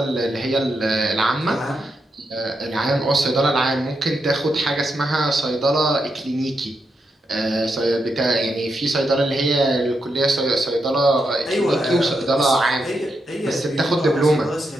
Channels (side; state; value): both; normal; correlation 0.83